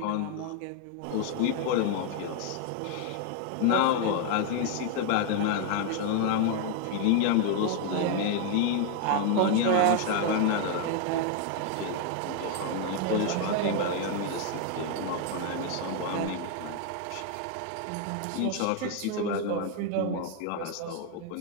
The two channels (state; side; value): different; both; correlation 0.00